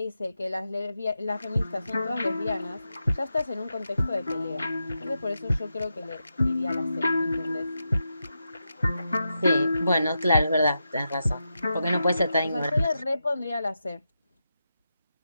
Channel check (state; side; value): inverted; both; correlation -0.88